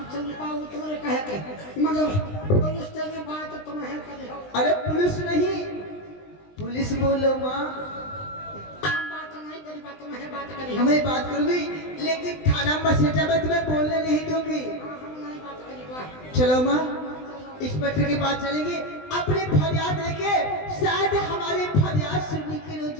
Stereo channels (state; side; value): late; right; 20 ms